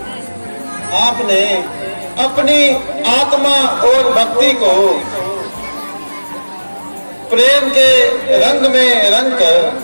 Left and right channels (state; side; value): inverted; both; correlation -1.00